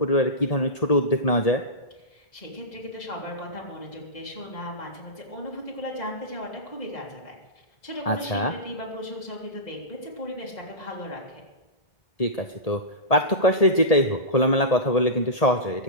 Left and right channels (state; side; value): late; right; 1.8 ms